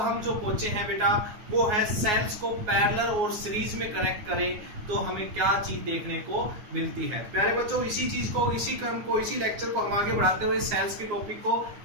जो पहुंचे हैं बेटा वो है सेल्स को पैरेलल और सीरीज में कनेक्ट करें तो हमें क्या चीज देखने को मिलती है। प्यारे बच्चों, इसी चीज को, इसी क्रम को, इसी लेक्चर को हम आगे बढ़ाते हुए सेल्स के टॉपिक को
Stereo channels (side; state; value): left; late; 9.5 ms